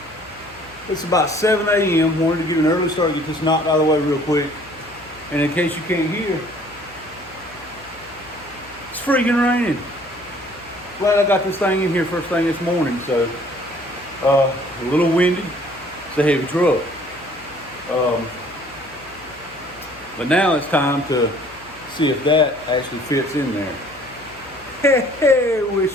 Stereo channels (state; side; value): noise; left; hum, 24 dB below the sound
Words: It's about 7 a.m. Wanted to get an early start, get this knocked out of the way real quick. And in case you can't hear, it's freaking raining. Glad I got this thing in here first thing this morning. So, a little windy. It's a heavy truck. But now it's time to see if that actually fits in there. Hey, wish